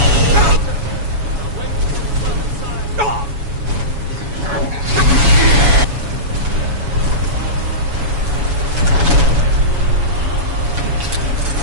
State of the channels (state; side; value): late; left; 7.1 ms